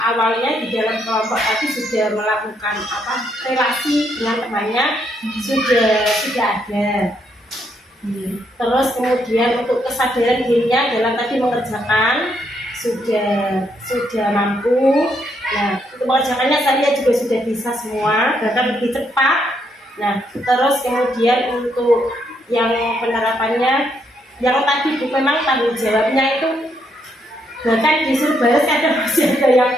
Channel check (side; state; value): both; normal; correlation 0.75